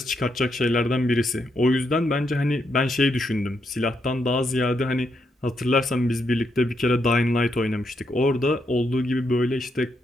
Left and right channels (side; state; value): both; normal; correlation 0.79